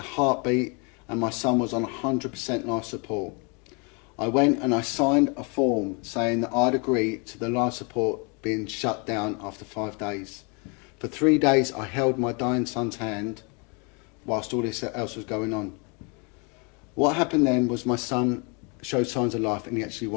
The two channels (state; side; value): quieter; right; 33.4 dB